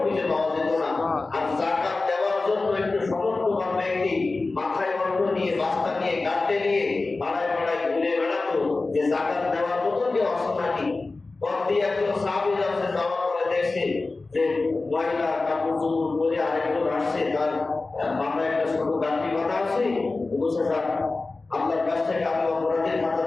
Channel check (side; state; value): right; quieter; 3.5 dB